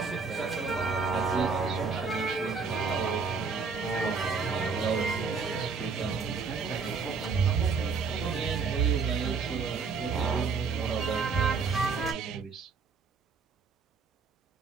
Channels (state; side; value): quieter; left; 5.1 dB